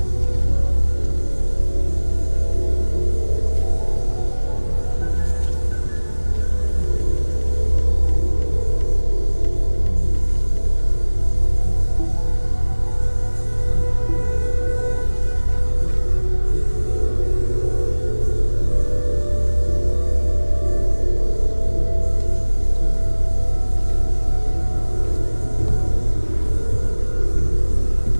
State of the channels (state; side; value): inverted; both; correlation -1.00